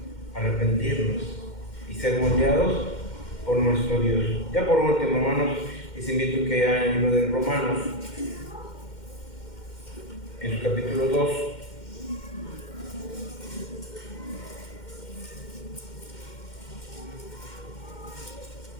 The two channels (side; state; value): right; late; 2.1 ms